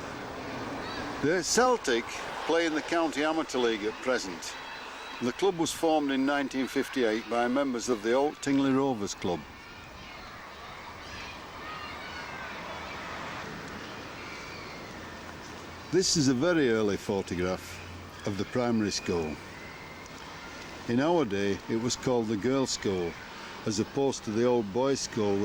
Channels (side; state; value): both; identical; correlation 1.00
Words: The Celtic play in the County Amateur League at present. The club was formed in 1958 by members of the Old Tingley Rovers Club. This is a very early photograph of the primary school. In our day it was called the Girls' School, as opposed to the old boys' school